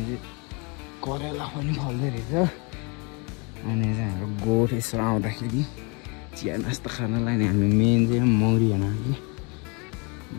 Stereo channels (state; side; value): quieter; right; 31.9 dB